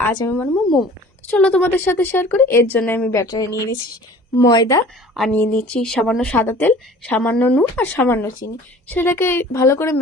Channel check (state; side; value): normal; both; correlation 0.47